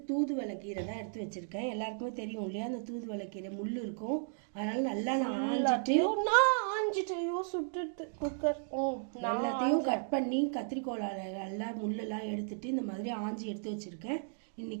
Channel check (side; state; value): left; silent; digital silence